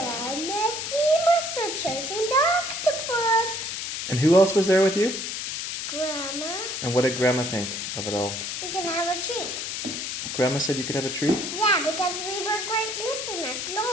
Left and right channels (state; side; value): noise; left; hiss, 4 dB below the sound